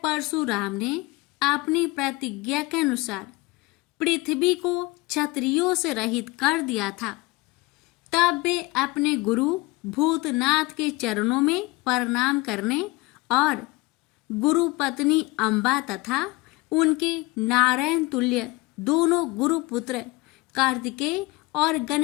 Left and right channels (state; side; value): quieter; right; 22.1 dB